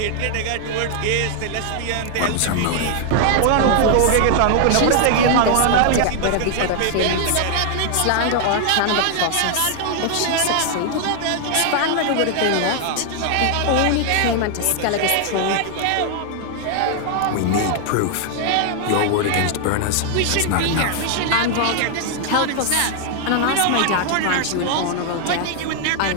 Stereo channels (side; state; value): both; different; correlation 0.00